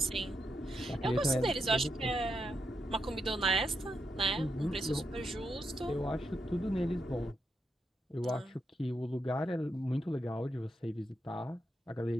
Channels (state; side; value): normal; both; correlation 0.82